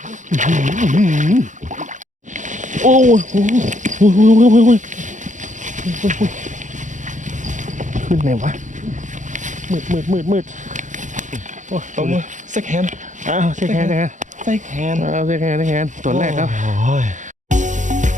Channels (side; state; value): left; late; 0.36 ms